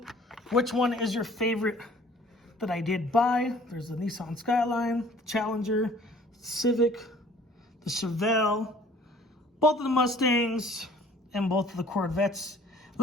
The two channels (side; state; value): both; normal; correlation 0.53